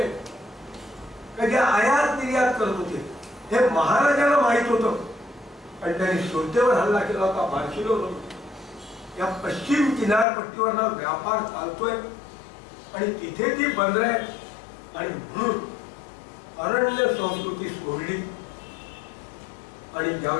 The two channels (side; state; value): right; drops out; at 10.2 s